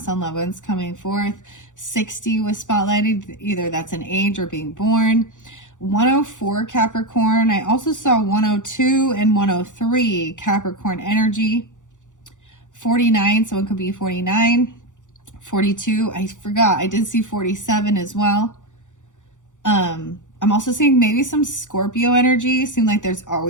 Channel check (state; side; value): late; right; 0.86 ms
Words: on loved ones coming forth. 60 was spotlighted. Either that's an age or being born. 104 Capricorn. I also saw 102 and 103 Capricorn energy. 49, so it could be 49. 42, I forgot. I did see 47 as well. I'm also seeing maybe some Scorpio energy. Seems like there's